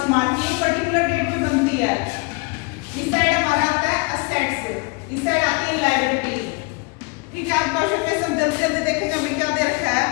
March, ये पर्टिकुलर डेट पे बनती है। इस साइड हमारा आता है असेट्स, इस साइड आती है लायबिलिटीज। ठीक है, आप क्वेश्चन में सब जल्दी जल्दी देखेंगे हमें क्या दे रखा है।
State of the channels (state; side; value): quieter; right; 29.5 dB